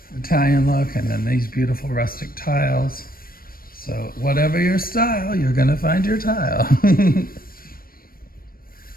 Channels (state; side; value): late; right; 0.42 ms